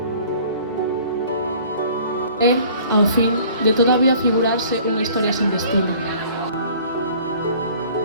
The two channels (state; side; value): inverted; both; correlation -0.51